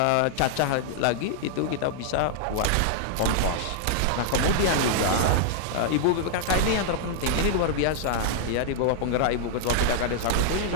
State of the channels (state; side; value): different; both; correlation -0.01